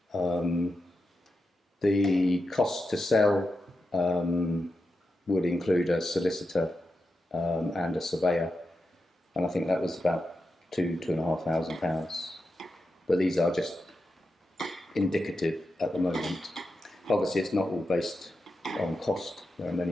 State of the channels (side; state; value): both; normal; correlation 0.89